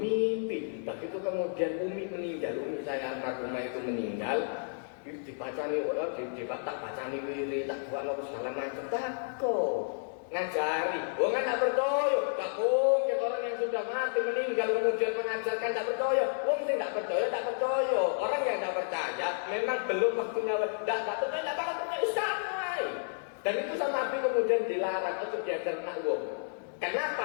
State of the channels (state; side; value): silent; right; digital silence